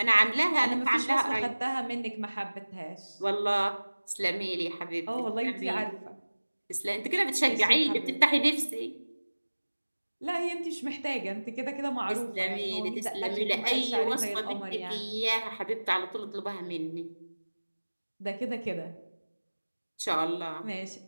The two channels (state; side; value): inverted; both; correlation -1.00